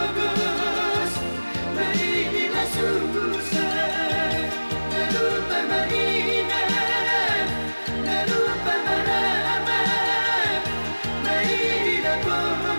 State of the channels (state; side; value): inverted; both; correlation -1.00